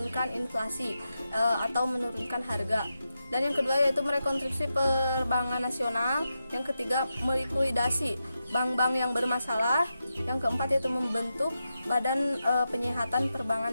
inflasi atau menurunkan harga. Dan yang kedua yaitu merekonstruksi perbankan nasional. Yang ketiga melikuidasi bank-bank yang bermasalah. Yang keempat yaitu membentuk Badan Penyihatan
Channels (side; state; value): both; inverted; correlation -0.88